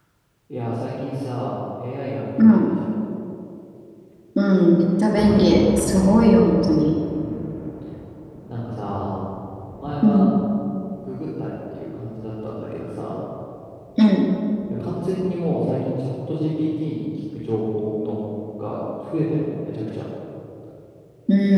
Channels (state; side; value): identical; both; correlation 1.00